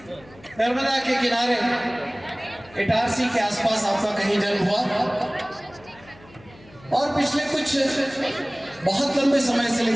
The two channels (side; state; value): left; noise; hum, 24 dB below the sound